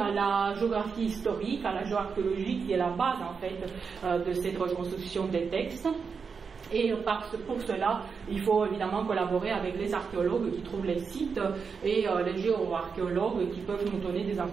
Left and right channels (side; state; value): left; quieter; 5.6 dB